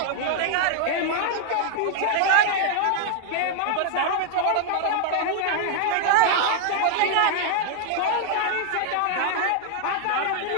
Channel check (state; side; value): different; both; correlation 0.00